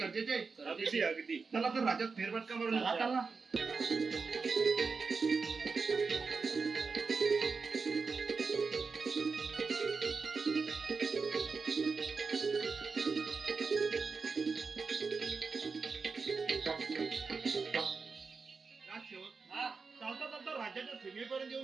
आहे अगदी अगदी चला तर राज्यात फेरफटका मारून चला, येऊया. चला. राजसेवक हा. चालता चालता राज्याच्या सीमेपर्यंत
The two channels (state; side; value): quieter; left; 4.8 dB